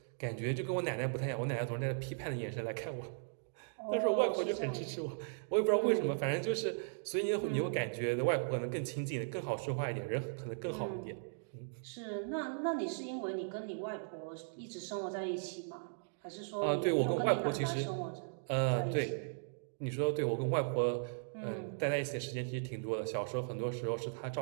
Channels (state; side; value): silent; left; digital silence